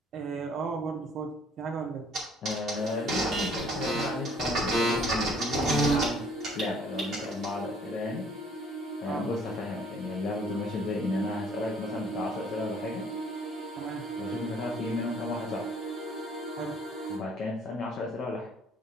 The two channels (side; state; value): both; normal; correlation 0.59